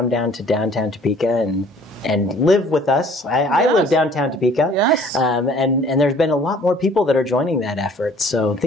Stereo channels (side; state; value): both; normal; correlation 0.54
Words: down to downtown Topeka and live with us. I live downtown Topeka, and there's been a lot more people that are joining that effort. So